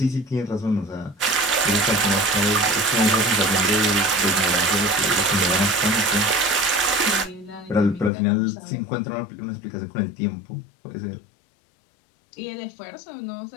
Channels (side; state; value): right; drops out; at 8.1 s